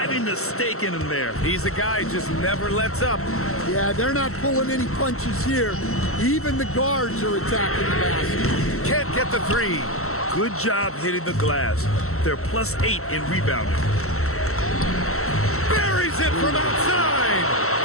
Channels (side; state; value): right; late; 0.63 ms